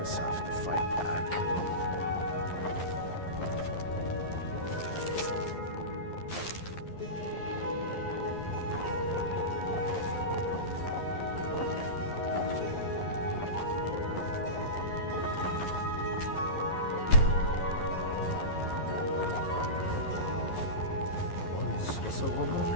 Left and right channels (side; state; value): right; late; 11 ms